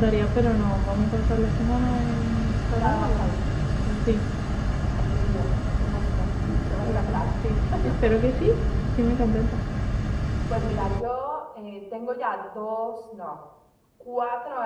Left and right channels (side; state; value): both; identical; correlation 1.00